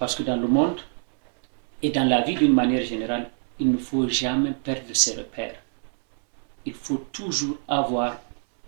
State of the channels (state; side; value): silent; left; 61 dB below the other